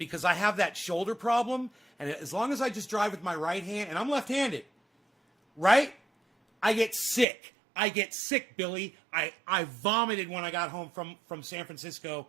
I have that shoulder problem. And as long as I just drive with my right hand, and I'm left-handed, right? I get sick. Billy. I vomited when I got home from San Francisco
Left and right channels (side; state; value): left; drops out; at 7.2 s